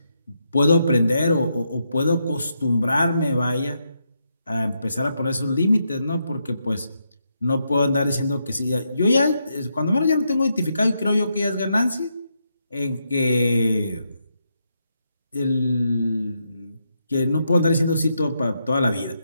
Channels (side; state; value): both; inverted; correlation -0.81